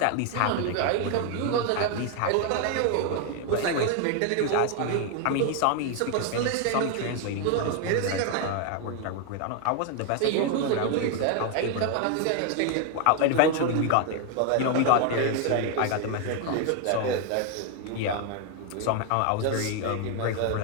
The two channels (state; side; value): different; both; correlation 0.01